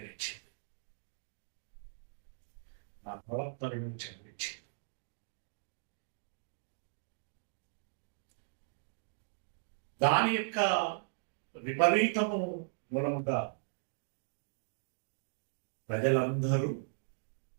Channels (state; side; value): silent; left; digital silence